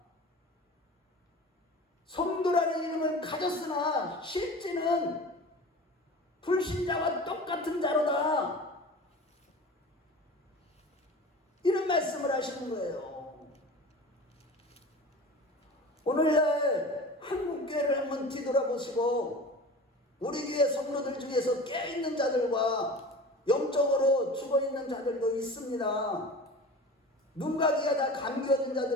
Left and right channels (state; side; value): normal; both; correlation 0.36